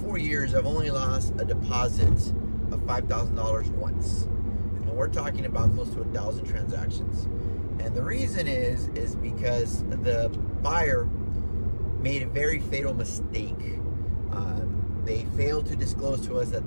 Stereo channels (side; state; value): both; inverted; correlation -1.00